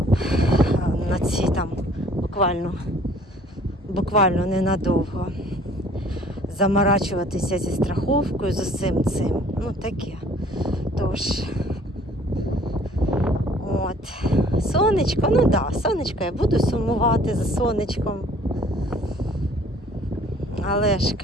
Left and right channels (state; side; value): normal; both; correlation 0.55